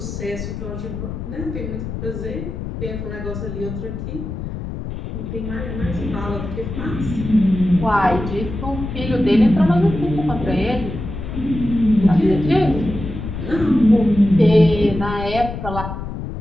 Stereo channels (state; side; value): noise; left; rumble, 7 dB below the sound